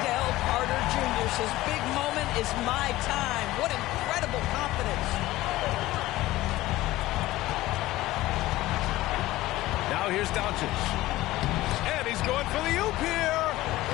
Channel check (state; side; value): quieter; right; 17.1 dB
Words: Carter Jr. says, big moment is my time. What incredible confidence. Now here's Doncic. And he's going for the oop here.